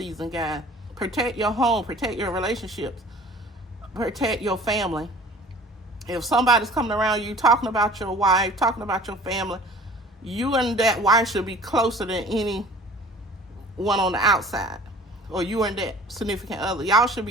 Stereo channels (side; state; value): both; normal; correlation 0.47